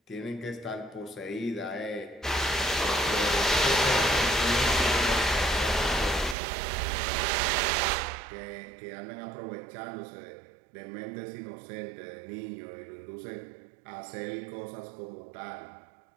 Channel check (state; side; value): drops out; left; at 6.4 s